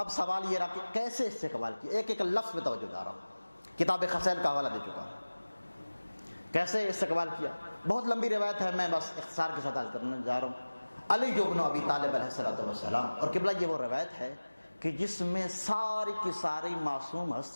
سوال یہ رہا کہ کیسے استقبال کیا، ایک ایک لفظ میں توجہ جا رہا ہوں، کتاب خصائل کا حوالہ دے چکا ہوں۔ کیسے استقبال کیا، بہت لمبی روایت ہے، میں بس اختصار کے ساتھ عرض کرنے جا رہا ہوں۔ علی بن ابی طالب علیہ السلام، اور قبلہ یہ وہ روایت ہے کہ جس میں ساری کی ساری معصوم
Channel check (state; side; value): inverted; both; correlation -1.00